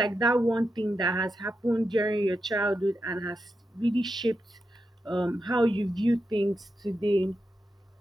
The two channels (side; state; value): both; normal; correlation 0.87